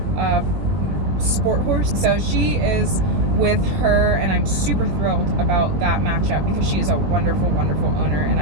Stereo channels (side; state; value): left; late; 20 ms